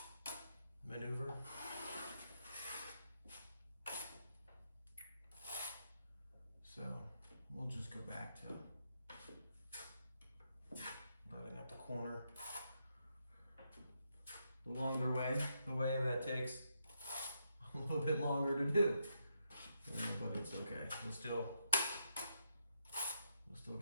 maneuver. So we'll just go back to running up the corner the longer way, the way that takes a little bit longer to do. But it's okay. We'll still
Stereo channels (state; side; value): inverted; both; correlation -0.80